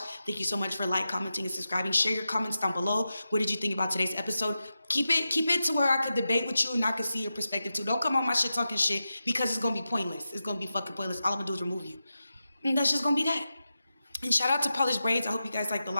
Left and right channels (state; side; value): inverted; both; correlation -0.91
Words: Thank you so much for commenting, and subscribing. Share your comments down below. What did you think about today's episode? Keep it to where I could debate with you and I could see your perspective too. Don't come on my shit talking shit, because it's gonna be pointless. It's gonna be fucking pointless. All I'm gonna do is remove you, and that's just gonna be that. And shout out to Polished Braids. I hope you guys like the